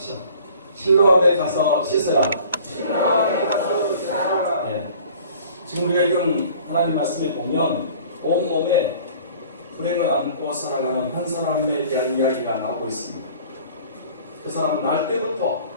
실로암에 가서 씻으라. 예. 지금 우리가 읽은 하나님 말씀에 보면 온몸에 불행을 안고 살아가는 한 사람에 대한 이야기가 나오고 있습니다. 그 사람은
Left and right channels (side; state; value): both; inverted; correlation -0.49